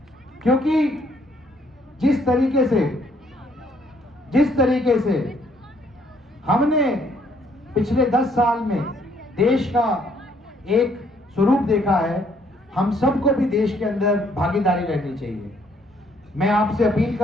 क्योंकि जिस तरीके से हमने पिछले 10 साल में देश का एक स्वरूप देखा है, हम सबको भी देश के अंदर भागीदारी रहनी चाहिए। मैं आपसे अपील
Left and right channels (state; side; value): normal; both; correlation 0.67